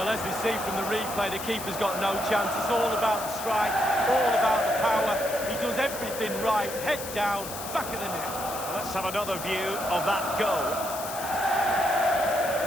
as we see from the replay, the keeper's got no chance. It's all about the strike, all about the power. He does everything right, head down, back of the net. Let's have another view of that goal.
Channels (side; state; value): left; noise; hiss, 9 dB below the sound